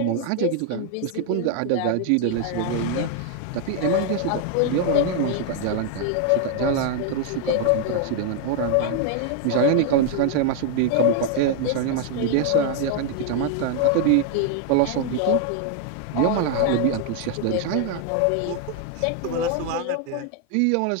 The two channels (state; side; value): different; both; correlation 0.00